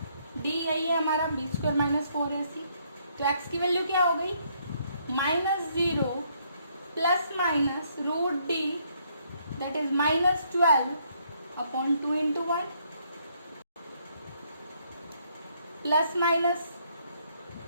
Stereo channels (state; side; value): inverted; both; correlation -0.70